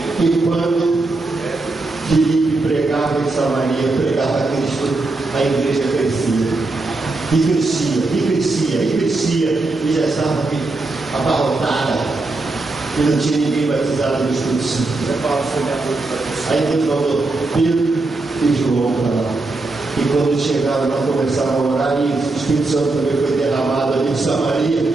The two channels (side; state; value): left; quieter; 3.2 dB